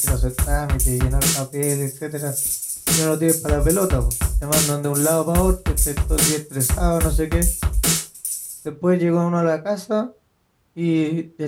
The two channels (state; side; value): identical; both; correlation 1.00